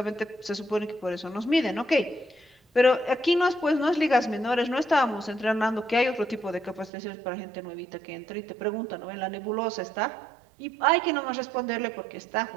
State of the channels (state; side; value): drops out; left; at 6.9 s